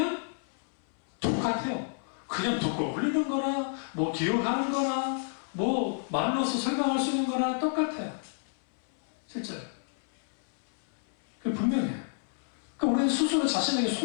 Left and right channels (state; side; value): silent; right; 58 dB below the other